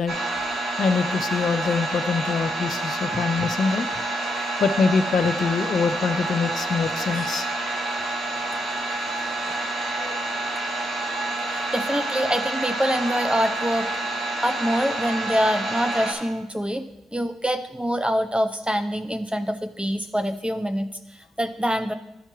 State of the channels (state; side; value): normal; both; correlation 0.82